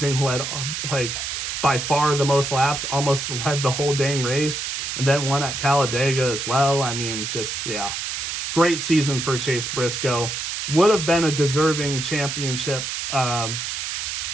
Led, by far the most laps, almost led the whole dang race. And then won at Talladega as well. I mean, just, yeah. Great season for Chase Briscoe. Would have been a deserving championship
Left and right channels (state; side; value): noise; right; hiss, 4 dB below the sound